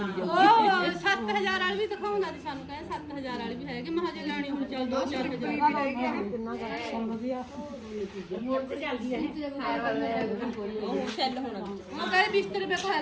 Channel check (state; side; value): identical; both; correlation 1.00